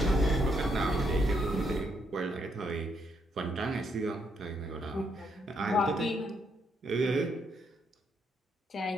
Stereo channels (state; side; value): normal; both; correlation 0.75